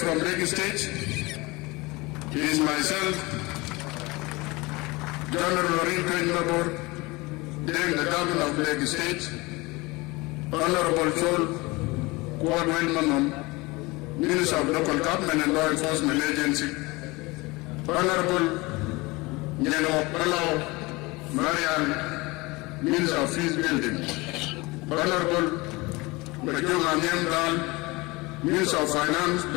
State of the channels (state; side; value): quieter; right; 23.4 dB